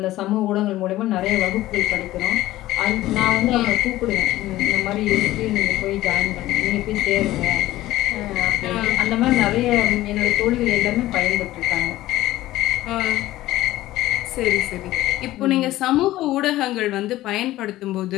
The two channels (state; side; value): quieter; right; 15.8 dB